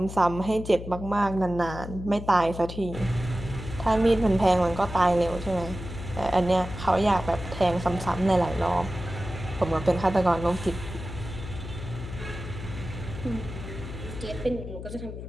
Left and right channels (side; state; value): left; noise; hum, 9 dB below the sound